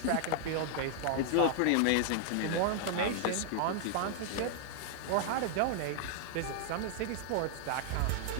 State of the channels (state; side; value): different; both; correlation 0.00